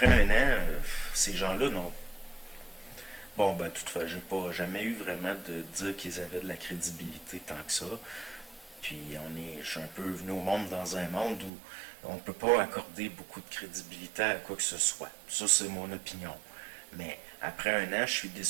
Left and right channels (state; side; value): drops out; left; at 11.5 s